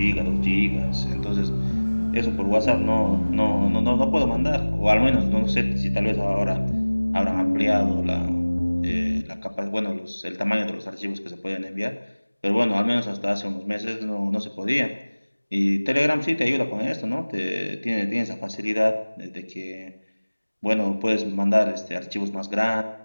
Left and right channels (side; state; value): both; inverted; correlation -1.00